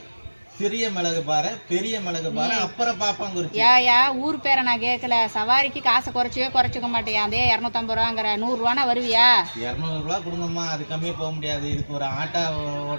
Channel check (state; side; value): inverted; both; correlation -1.00